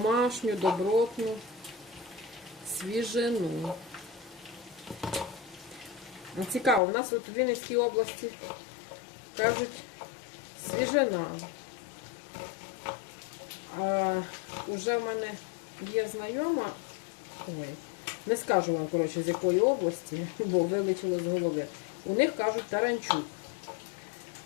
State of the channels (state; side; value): drops out; right; at 6.8 s